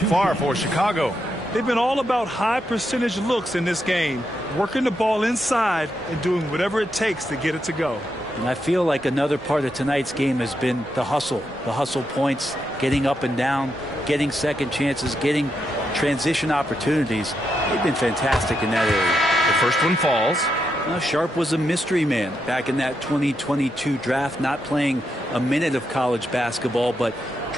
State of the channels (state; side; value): normal; both; correlation 0.83